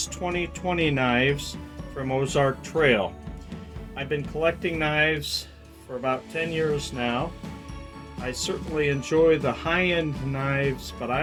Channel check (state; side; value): identical; both; correlation 1.00